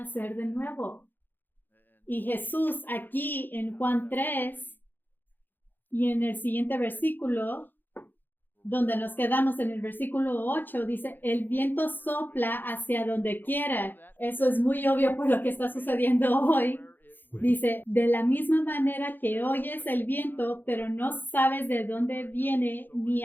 de nuevo. Y Jesús aquí en Juan 3 y en el siguiente versículo, donde nos quedamos en el versículo 8, dice, el viento sopla hacia donde quiera. Eso es muy obvio por lo que está sucediendo hoy. Dice, de la misma manera que oyes el viento, pero no sabes de dónde viene ni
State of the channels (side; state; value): right; late; 0.091 ms